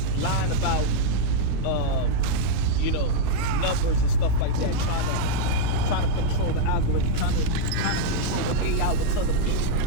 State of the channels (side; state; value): both; different; correlation -0.01